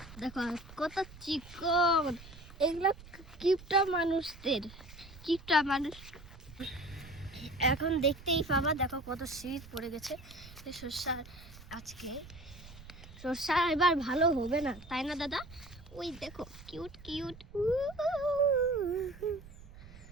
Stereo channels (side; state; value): right; noise; rumble, 18 dB below the sound